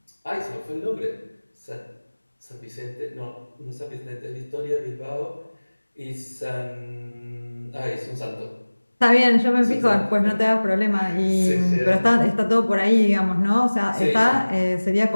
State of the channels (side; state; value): both; inverted; correlation -1.00